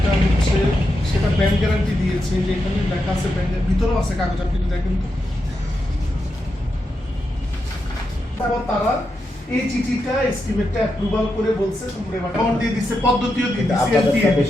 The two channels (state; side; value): normal; both; correlation 0.86